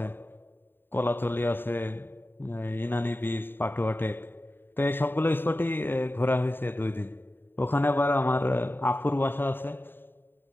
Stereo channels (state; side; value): late; right; 0.097 ms